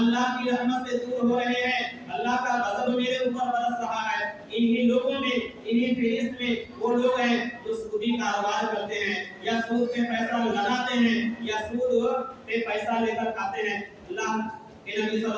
کی رحمت سے دور ہو رہے ہیں، اللہ کا غضب میرے اوپر برس رہا ہے۔ انہی لوگوں میں، انہی فہرست میں وہ لوگ ہیں جو سودی کاروبار کرتے ہیں، یا سود پہ پیسہ لگاتے ہیں، یا سود پہ پیسہ لے کر کھاتے ہیں۔ اللہ کہ نبی صلی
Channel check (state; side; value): identical; both; correlation 1.00